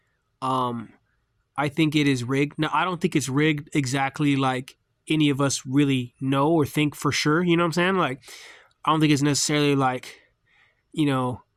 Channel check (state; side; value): identical; both; correlation 1.00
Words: Um, I think it is rigged. Now, I don't think it's rigged exactly like any of us really know or think for sure. You know what I'm saying? Like, I don't think it's necessarily like, you know,